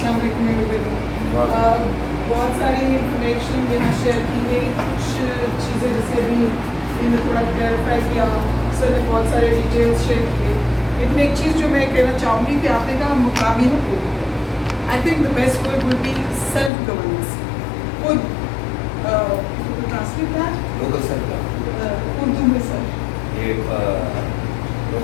السلام علیکم. بہت ساری انفارمیشن یہاں شیئر کی گئی, کچھ چیزیں جیسے ابھی میں نے تھوڑا کلیئرفائی کیا, سر نے بہت سارے ڈیٹیلس شیئر کیے. لیکن ایک چیز جو میں کہنا چاہوں گی کہ آپ نے کہا مقامی حکومت, I think the best word will be self governance. خود ٹرانسلیٹ لوکل سیلف اردو میں سر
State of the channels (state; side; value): drops out; right; at 16.7 s